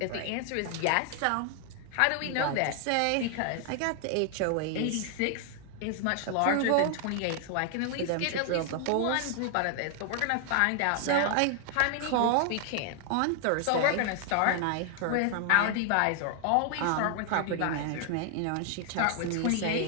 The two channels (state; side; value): different; both; correlation 0.00